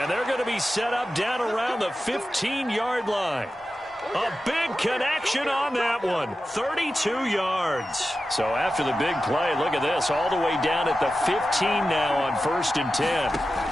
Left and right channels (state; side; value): normal; both; correlation 0.93